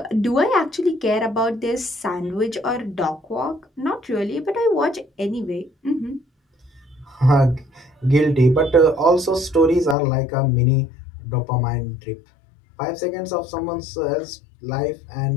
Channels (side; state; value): right; drops out; at 10.0 s